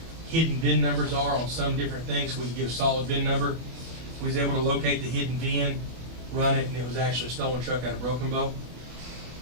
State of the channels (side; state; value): left; late; 24 ms